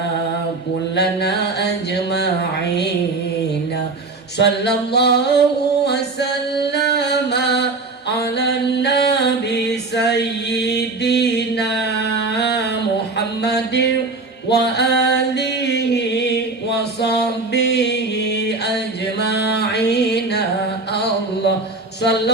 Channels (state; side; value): quieter; left; 3.6 dB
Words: كلنا أجمعين. صلى الله وسلم على النبي سيدنا محمد وآله وصحبه أجمعين. الله